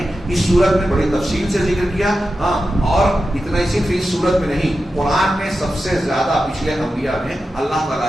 اس صورت میں بڑی تفصیل سے ذکر کیا، ہاں، اور اتنا ہی صرف اس صورت میں نہیں، قرآن میں سب سے زیادہ پچھلے انبیاء میں اللہ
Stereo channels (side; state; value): both; normal; correlation 0.91